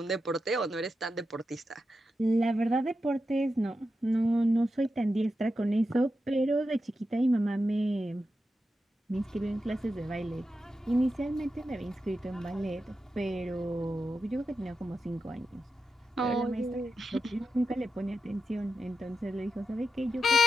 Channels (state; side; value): normal; both; correlation 0.89